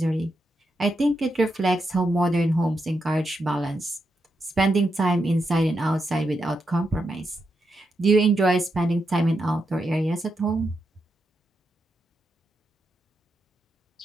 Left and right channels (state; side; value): normal; both; correlation 0.84